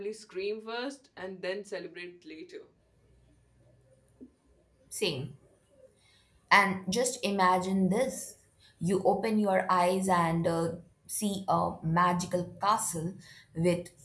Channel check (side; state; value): both; identical; correlation 1.00